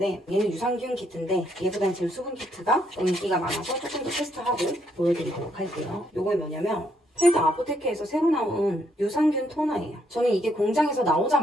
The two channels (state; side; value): normal; both; correlation 0.73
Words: 얘는 유산균 키트인데 얘보다는 지금 수분 키트가 인기가 많아서 조금 더 테스트하고 보여드리도록 할게요. 요거 뭐냐면 펠드 아포테케에서 새로 나온 유산균 토너예요. 저는 이게 공장에서